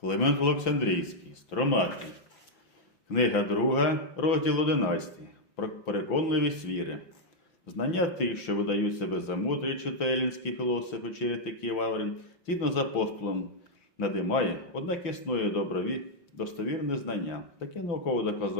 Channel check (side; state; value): right; late; 5.9 ms